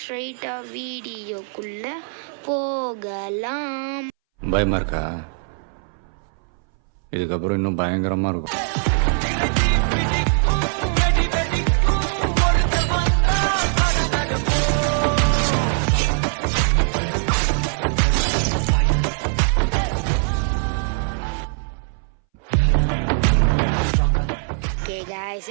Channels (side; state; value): left; silent; 63 dB below the other